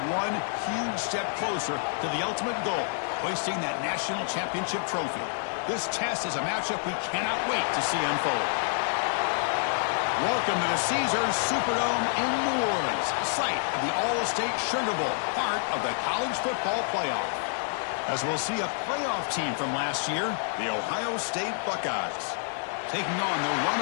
one huge step closer to the ultimate goal, hoisting that national championship trophy. This test is a matchup we cannot wait to see unfold. Welcome to the Caesars Superdome in New Orleans, site of the All-State Sugar Bowl, part of the college football playoff. As we'll see a playoff team from last year, the Ohio State Buckeyes, taking on the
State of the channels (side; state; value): right; silent; digital silence